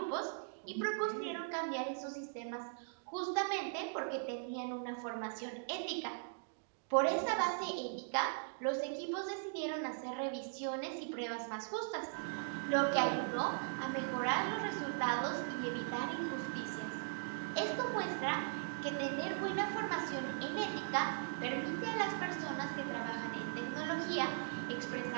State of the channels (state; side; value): silent; left; digital silence